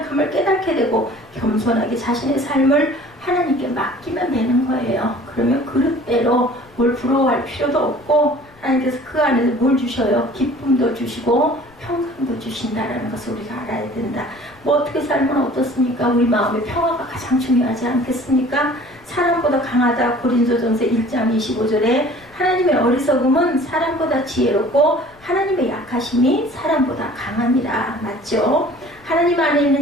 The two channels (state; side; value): noise; left; rumble, 28 dB below the sound